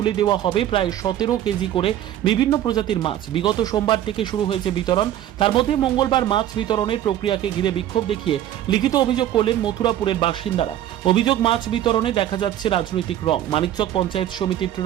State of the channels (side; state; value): left; quieter; 12.1 dB